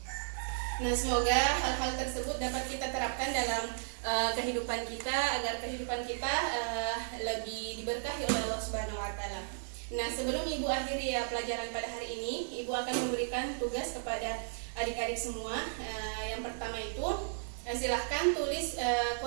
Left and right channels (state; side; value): silent; left; 55 dB below the other